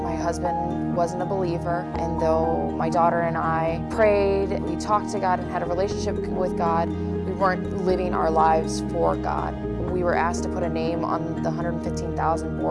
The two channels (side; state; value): both; identical; correlation 1.00